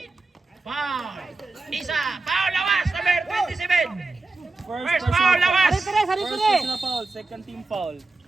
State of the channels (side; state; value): left; quieter; 3.4 dB